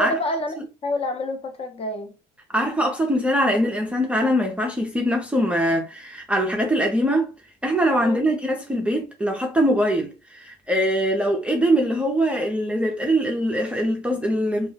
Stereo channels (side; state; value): both; normal; correlation 0.71